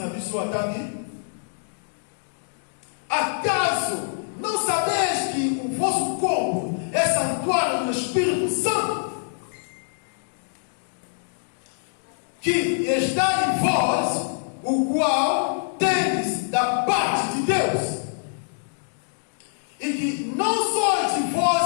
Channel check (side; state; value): right; silent; digital silence